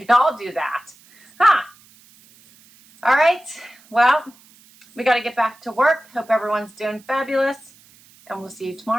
all do that. Huh? All right. Well, we got to get back to work. Hope everyone's doing fabulous. And we'll see you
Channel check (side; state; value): right; noise; hiss, 27 dB below the sound